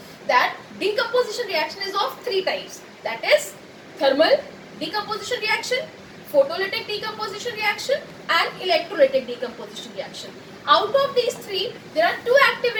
that decomposition reaction is of three types. That is thermal decomposition reaction, photolytic decomposition reaction, and electrolytic decomposition reaction. Out of these three, there are two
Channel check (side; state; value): both; identical; correlation 1.00